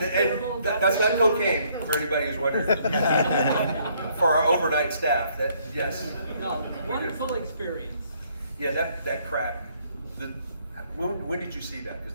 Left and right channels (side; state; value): both; inverted; correlation -0.67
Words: And that's not cocaine, for anybody who's wondering. For our overnight staff, that, yes. No, wonderful experience. Yeah, that crack. When did you see that?